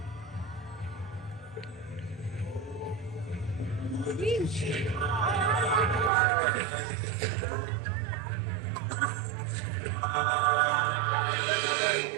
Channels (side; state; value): left; drops out; at 6.1 s